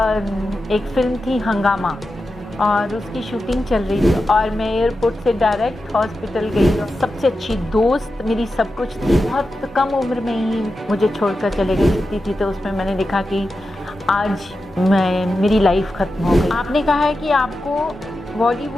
एक फ़िल्म थी हंगामा और उसकी शूटिंग चल रही थी और मैं एयरपोर्ट से डायरेक्ट हॉस्पिटल गई। सबसे अच्छी दोस्त मेरी सब कुछ थी, बहुत कम उम्र में ही मुझे छोड़कर चले गई थी। तो उसमें मैंने देखा कि आज मेरी लाइफ ख़त्म हो गई। आपने कहा है कि आपको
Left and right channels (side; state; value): both; normal; correlation 0.91